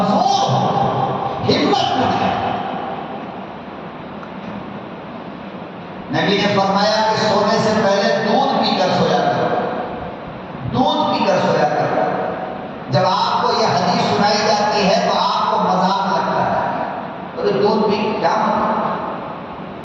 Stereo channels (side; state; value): both; identical; correlation 1.00